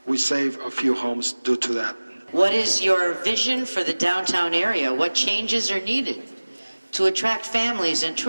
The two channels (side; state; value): both; inverted; correlation -1.00